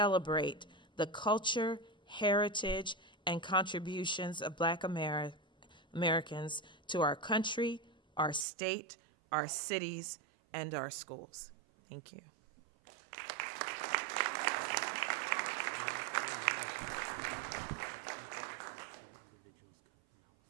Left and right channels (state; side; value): drops out; left; at 8.5 s